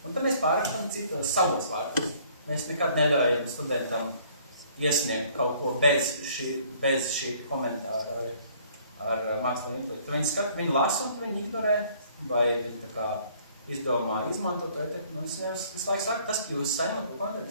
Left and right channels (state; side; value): inverted; both; correlation -0.59